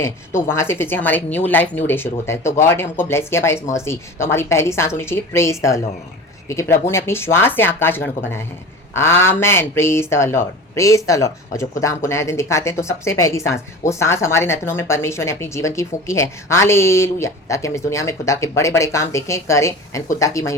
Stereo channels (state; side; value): normal; both; correlation 0.35